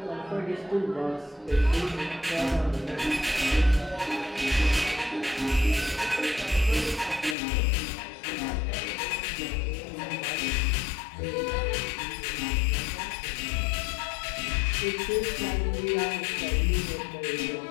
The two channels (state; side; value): drops out; right; at 7.4 s